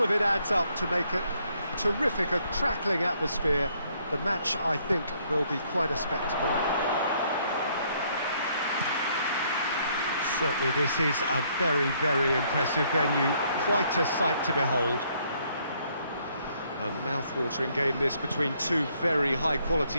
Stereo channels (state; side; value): inverted; both; correlation -0.68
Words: of it adds up to make it terrific, a crackling atmosphere. The match, I think, will be quite a spectacle. Certainly this is a very, very impressive venue, quite a sight to behold. A mouth-watering game this between two very